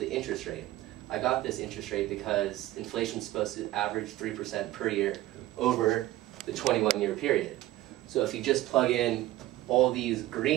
interest rate. I got this interest rate because inflation is supposed to average 3% per year over the 21-year period. So if you just plug in all these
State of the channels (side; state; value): left; quieter; 15.9 dB